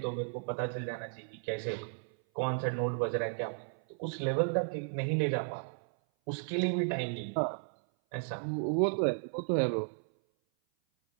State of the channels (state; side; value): silent; left; 55 dB below the other